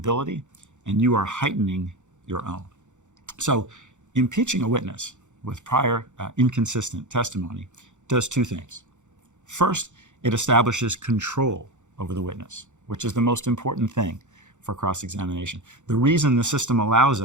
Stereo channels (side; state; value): left; late; 0.85 ms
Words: and you are heightening your own. So impeaching a witness with prior inconsistent testimony does two things. First, it establishes control over the witness, which is the most important thing for cross-examination. The reason the system allows